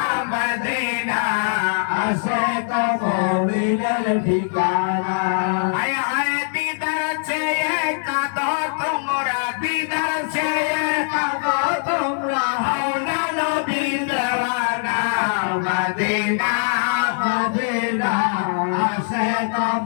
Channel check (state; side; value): silent; right; 56 dB below the other